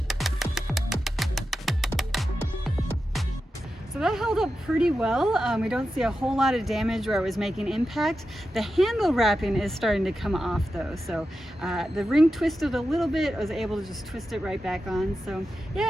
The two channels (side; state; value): both; normal; correlation 0.90